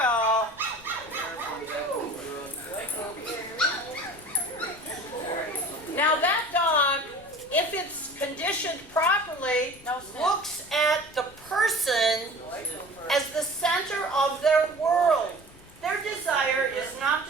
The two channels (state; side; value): noise; left; rumble, 23 dB below the sound